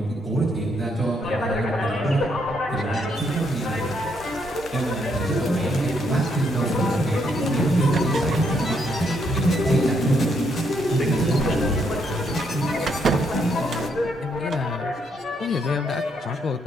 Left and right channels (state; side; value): normal; both; correlation 0.74